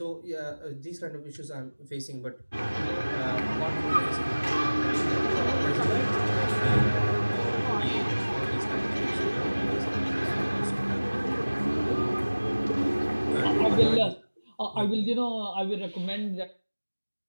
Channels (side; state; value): both; inverted; correlation -1.00